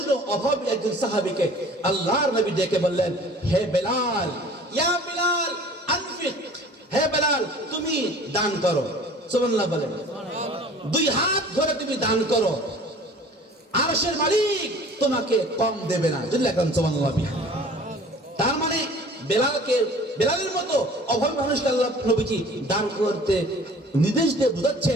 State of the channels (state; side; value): normal; both; correlation 0.47